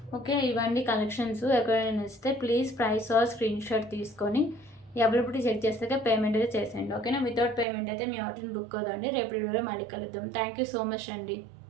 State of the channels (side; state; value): left; drops out; at 7.7 s